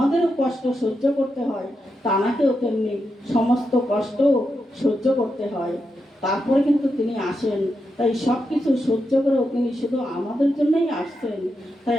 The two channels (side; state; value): both; normal; correlation 0.86